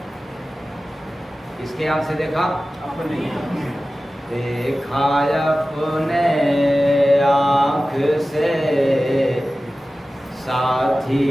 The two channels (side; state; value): both; normal; correlation 0.95